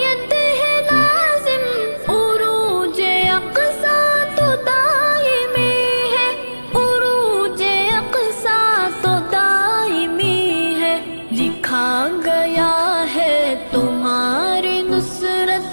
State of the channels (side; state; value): both; inverted; correlation -1.00